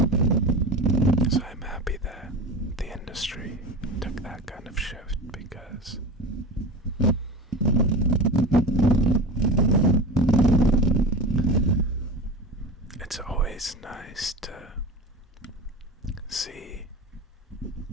so I'm happy that the industry took that kind of shift, because it's always nice to see,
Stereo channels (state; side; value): normal; both; correlation 0.30